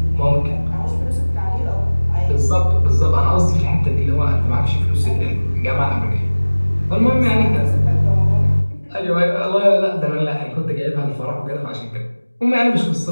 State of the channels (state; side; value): inverted; both; correlation -1.00